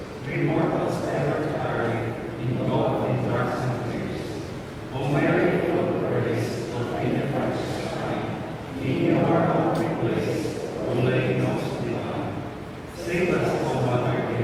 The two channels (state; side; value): identical; both; correlation 1.00